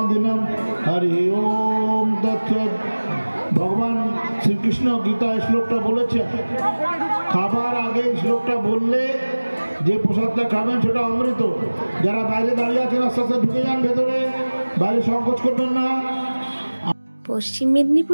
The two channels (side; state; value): both; inverted; correlation -1.00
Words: হরি ওম তৎসৎ। ভগবান শ্রীকৃষ্ণ গীতায় শ্লোকটা বলেছে, খাবার আগে শ্লোকটা বললে যে প্রসাদটা খাবেন সেটা অমৃত। যারা বাইরে দাঁড়িয়ে আছেন আস্তে আস্তে ঢুকে যান ভেতরে, বাইরে সংকোচ করবেন না। পশ্চিম